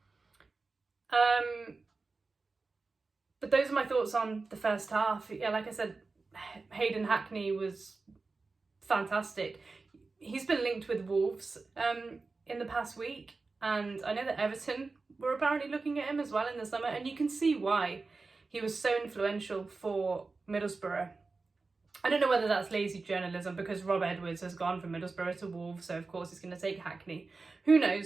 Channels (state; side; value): quieter; left; 3.9 dB